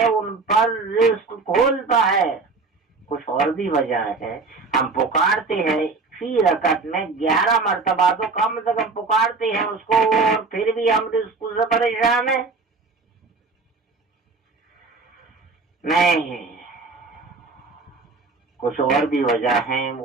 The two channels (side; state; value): left; quieter; 4.1 dB